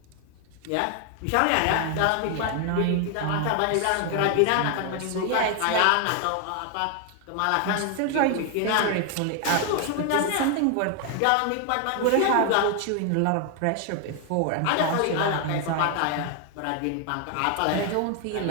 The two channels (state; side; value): different; both; correlation 0.00